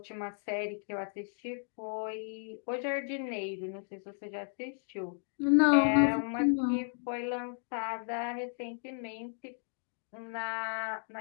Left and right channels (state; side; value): silent; right; digital silence